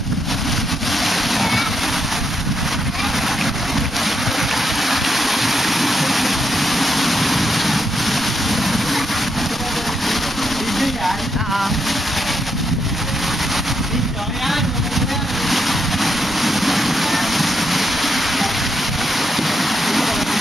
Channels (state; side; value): normal; both; correlation 0.80